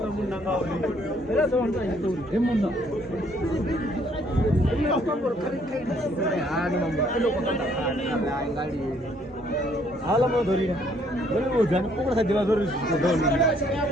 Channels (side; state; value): both; normal; correlation 0.65